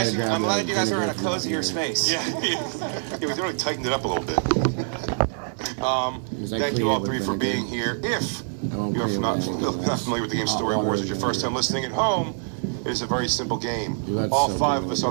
you guys are in a cozier space. Yeah, we really tightened it up a little bit. Thank you all 3 for being here. If you're not familiar with the game Story Wars, it's your first time listening at home, it is a very simple game. All 5 of us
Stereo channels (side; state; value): left; silent; 62 dB below the other